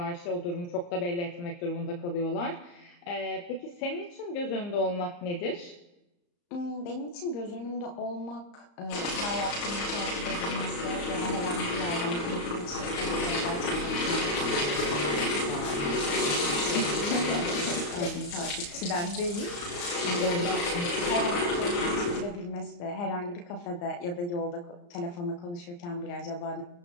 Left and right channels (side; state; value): right; late; 34 ms